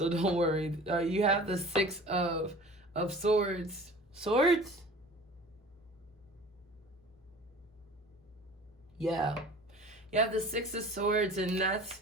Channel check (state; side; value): normal; both; correlation 0.42